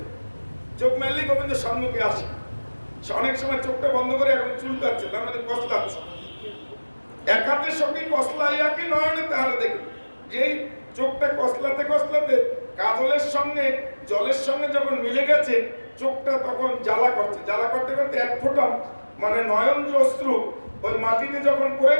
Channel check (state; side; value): inverted; both; correlation -1.00